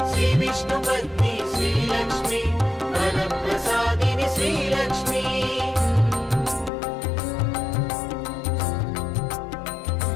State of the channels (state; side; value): drops out; right; at 6.7 s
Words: श्रीविष्णुपत्नी श्रीलक्ष्मी वरप्रसादिनि श्रीलक्ष्मी